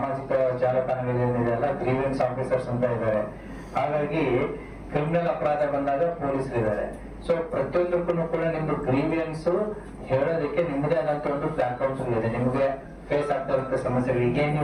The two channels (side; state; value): both; identical; correlation 1.00